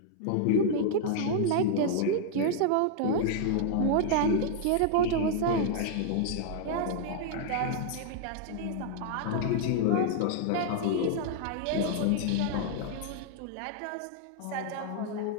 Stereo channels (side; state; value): both; different; correlation 0.00